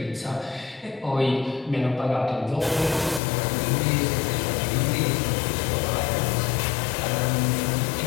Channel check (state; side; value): drops out; right; at 3.2 s